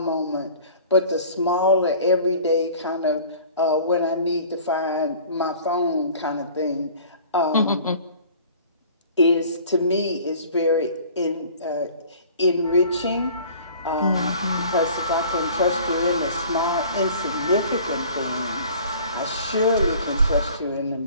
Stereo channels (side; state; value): both; inverted; correlation -0.47